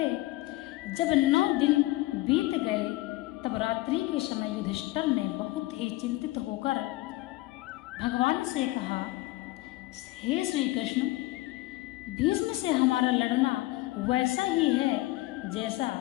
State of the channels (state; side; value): quieter; right; 18.6 dB